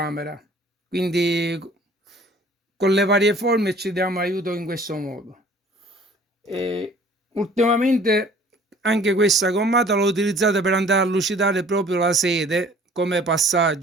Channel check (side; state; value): both; normal; correlation 0.52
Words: quindi con le varie forme ci diamo aiuto in questo modo. E ultimamente anche questa gommata l'ho utilizzata per andare a lucidare proprio la sede come